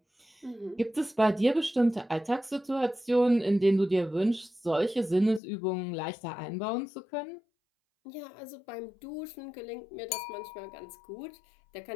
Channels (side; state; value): right; drops out; at 5.4 s